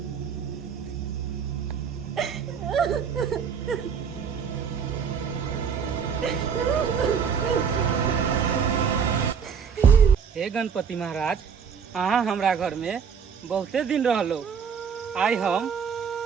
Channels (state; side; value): quieter; left; 6.7 dB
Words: हे गणपति महाराज, अहाँ हमरा घर में बहुते दिन रहलो, आई हम